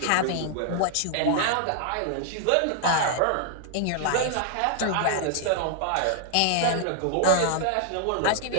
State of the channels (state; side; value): different; both; correlation 0.00